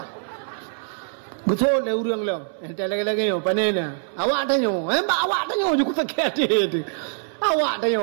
Betul le urang lo. Ente lagi-lagi yo panena. Awak tanyo. Awak tanyo je ku tak tu. Awak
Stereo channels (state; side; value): silent; left; 63 dB below the other